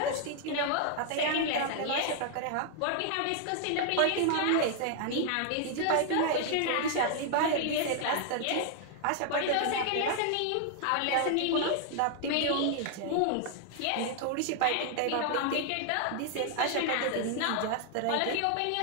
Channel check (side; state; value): both; different; correlation 0.00